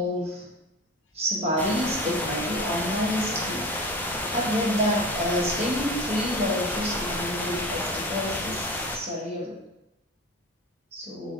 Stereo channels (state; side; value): normal; both; correlation 0.31